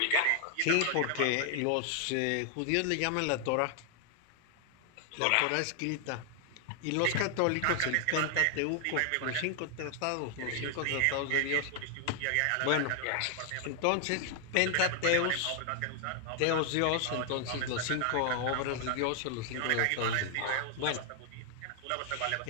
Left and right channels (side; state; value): both; different; correlation 0.00